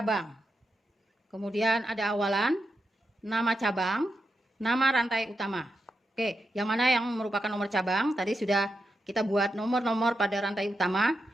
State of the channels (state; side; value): normal; both; correlation 0.86